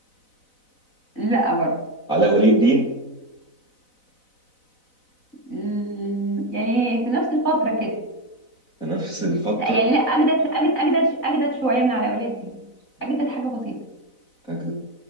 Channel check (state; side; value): late; right; 4.0 ms